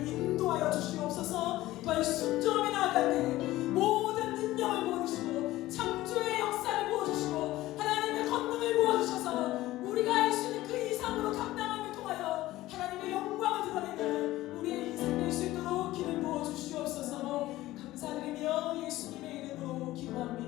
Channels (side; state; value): right; quieter; 16.6 dB